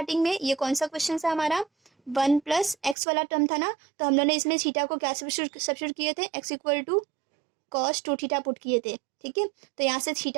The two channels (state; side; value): drops out; left; at 3.0 s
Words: में, ये कौन सा क्वेश्चन था हमारा, 1 + x वाला टर्म था ना, तो हम लोगों ने इसमें थीटा को क्या सब्स्टिट्यूट किए थे, x equal to cos 2 theta put किए थे, ठीक है। तो यहाँ से